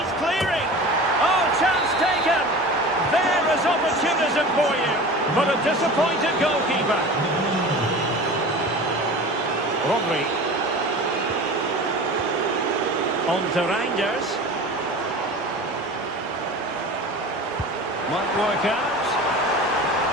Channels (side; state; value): both; normal; correlation 0.36